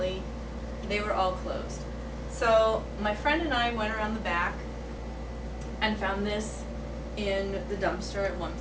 they were all closed. So my friend and I went around the back and found this in the dumpster at one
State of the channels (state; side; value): identical; both; correlation 1.00